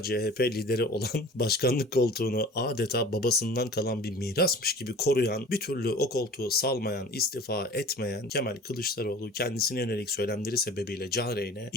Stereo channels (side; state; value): both; normal; correlation 0.42